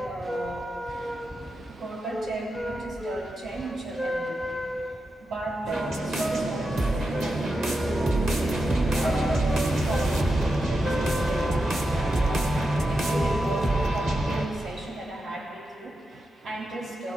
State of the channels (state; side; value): normal; both; correlation 0.88